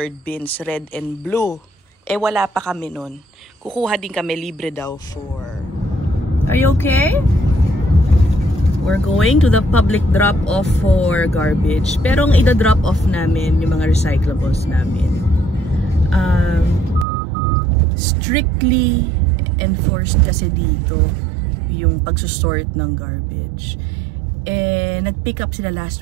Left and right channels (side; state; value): left; drops out; at 17.1 s